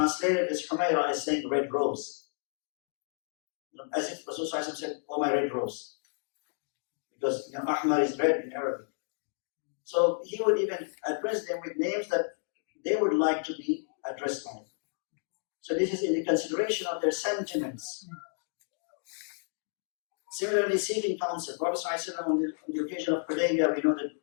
this Humayra as saying red rose. As if Rasulullah said, "Oh, my red rose." Because Ahmar is red in Arabic. So he would even address them with names that they would like to be addressed by. So this is in the consideration of their sentiments. Similarly, seeking counsel. Prophet ﷺ on the occasion of Hudaybiyah, we know that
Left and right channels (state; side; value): silent; right; digital silence